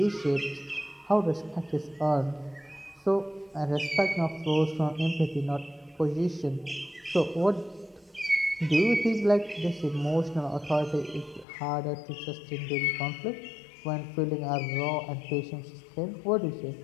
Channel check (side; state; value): right; drops out; at 11.5 s